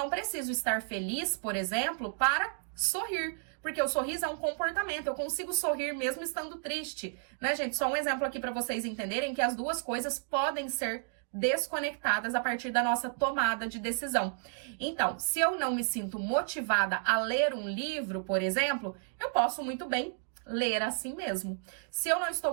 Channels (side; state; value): left; silent; digital silence